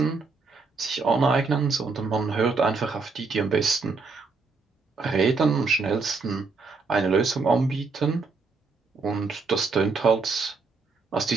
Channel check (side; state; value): left; quieter; 4.3 dB